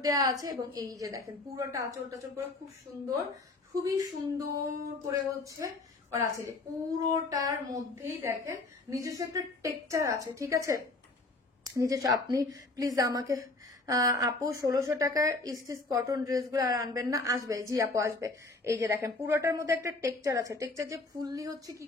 দেওয়া আছে, এবং এই যে দেখেন পুরোটা আঁচল টাচল করে খুব সুন্দর, খুবই সুন্দর করে হচ্ছে করা আছে। পুরোটার মধ্যেই দেখেন নিজস্ব একটা টেক্সচার আছে, ঠিক আছে। নিজস্ব আপনি প্লিজ আমাকে আপু 1600 টাকার স্টিচ কটন ড্রেসগুলো আর আনবেন না? আসবে, জি আপু আসবে। এই যে দেখেন পুরোটার মধ্যে একটা টেক্সচার আছে, টেক্সচার যে ফুললি হচ্ছে কি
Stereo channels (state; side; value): quieter; right; 3.2 dB